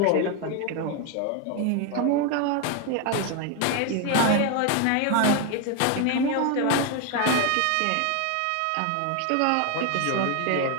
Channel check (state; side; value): different; both; correlation 0.01